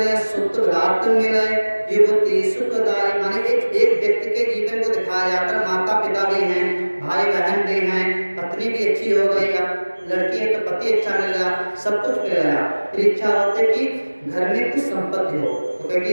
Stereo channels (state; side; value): inverted; both; correlation -1.00